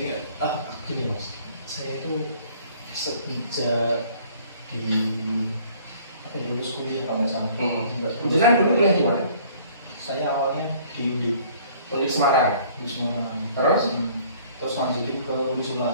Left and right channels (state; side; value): inverted; both; correlation -0.55